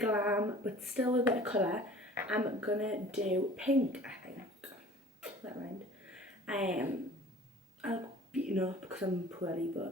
but still a bit of colour. I'm gonna do pink, I think. That rhymed. I'll beaten up because I'm poorly,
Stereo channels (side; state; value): both; normal; correlation 0.47